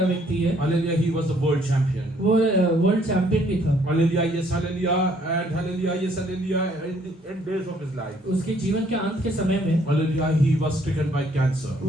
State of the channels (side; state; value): both; normal; correlation 0.65